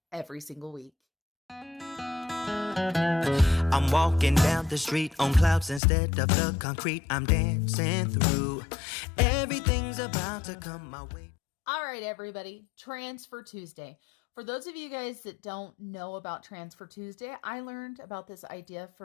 every single week. I'm walking down the street on clouds instead of the concrete I'm dancing through. Everything's about to come my way. All right, everybody, Transfer Tuesday. For those of you guys that don't know about Transfer Tuesday, I learned about this idea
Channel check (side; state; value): right; drops out; at 5.8 s